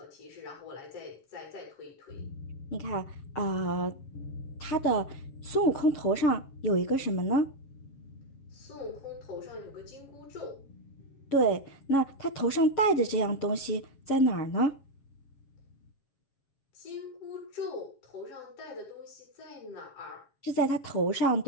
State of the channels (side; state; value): right; late; 7.3 ms